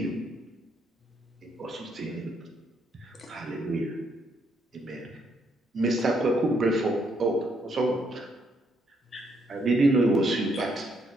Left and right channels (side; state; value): both; normal; correlation 0.73